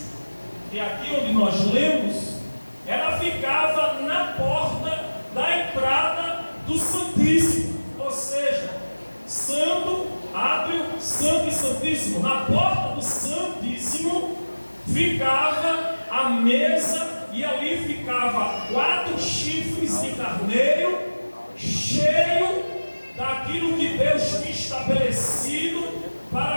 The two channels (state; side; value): inverted; both; correlation -1.00